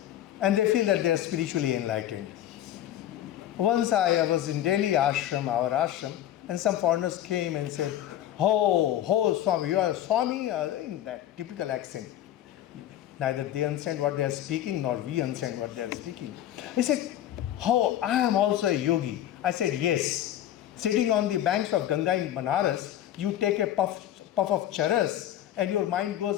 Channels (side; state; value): right; quieter; 12.2 dB